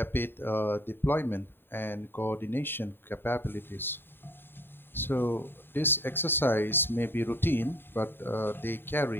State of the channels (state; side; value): late; right; 0.10 ms